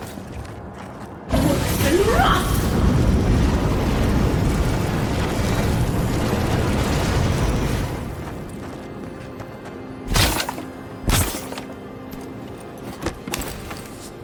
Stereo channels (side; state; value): both; identical; correlation 1.00